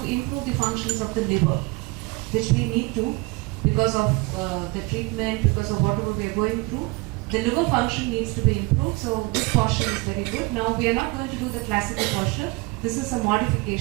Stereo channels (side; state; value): left; quieter; 25.0 dB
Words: improve the functions of the liver, which we need to because of the treatment, because of whatever we are going through. The liver function needs to be improved, so this posture is very good. Now we are not going to do the classical posture. This is a